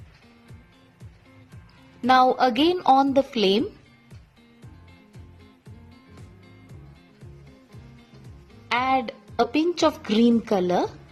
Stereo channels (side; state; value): both; identical; correlation 1.00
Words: Now again on the flame. Add a pinch of green color.